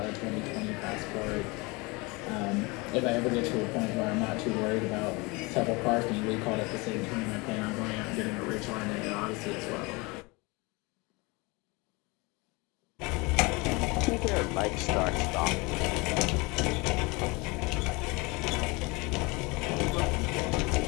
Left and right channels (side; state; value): right; quieter; 26.2 dB